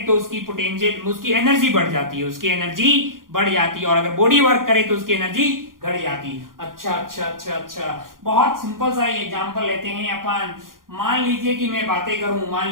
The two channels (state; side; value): late; left; 0.91 ms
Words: तो उसकी पोटेंशियल, उसकी एनर्जी बढ़ जाती है, और अगर बॉडी वर्क करे तो उसकी एनर्जी घट जाती है। अच्छा, बहुत सिंपल सा एग्जांपल लेते हैं अपन। मान लीजिए कि मैं बातें करूं